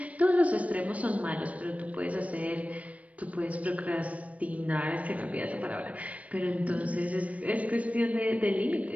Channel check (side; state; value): left; late; 0.066 ms